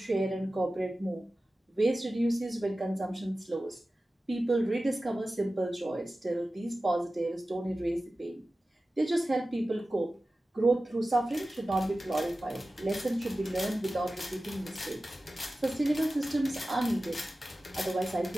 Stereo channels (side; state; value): both; normal; correlation 0.95